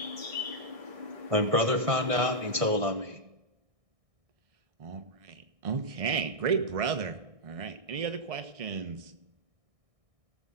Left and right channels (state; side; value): late; left; 1.6 ms